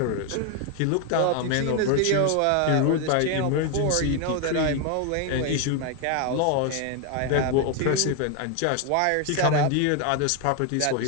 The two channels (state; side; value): different; both; correlation 0.01